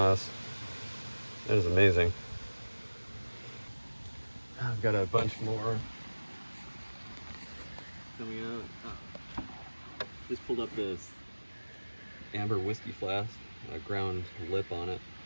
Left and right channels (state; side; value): inverted; both; correlation -1.00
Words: That is amazing. I've got a bunch more coming out. Just pulled up this amber whiskey flask, a ground lip on it,